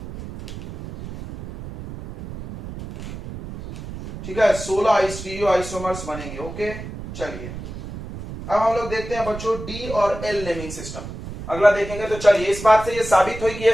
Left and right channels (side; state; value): right; noise; rumble, 11 dB below the sound